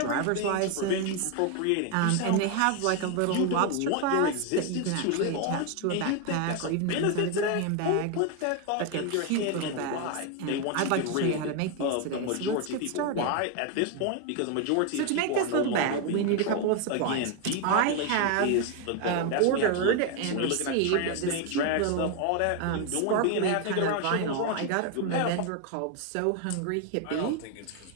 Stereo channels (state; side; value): different; both; correlation 0.01